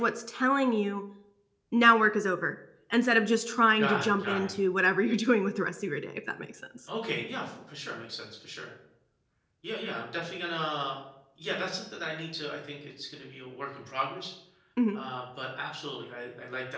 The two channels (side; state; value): both; identical; correlation 1.00